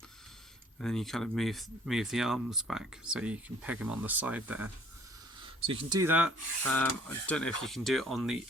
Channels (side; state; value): both; normal; correlation 0.57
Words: And then you kind of move the arms back so you can peg them on the side there. So you can do that. I don't know if you can do it on the